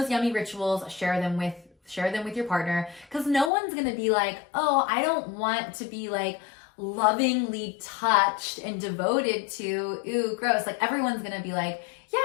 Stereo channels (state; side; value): drops out; right; at 3.5 s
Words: yummy rituals, share them with your partner, because no one's gonna be like, oh, I don't want to be like lovingly touched and devoted to, ooh, gross. Like everyone's gonna be like, yeah,